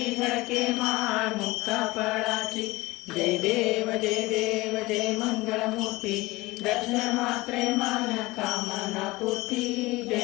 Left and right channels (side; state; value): right; quieter; 20.8 dB